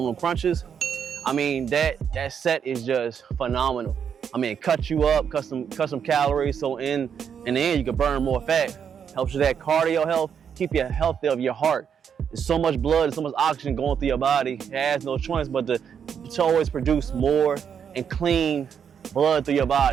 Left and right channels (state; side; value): quieter; left; 7.6 dB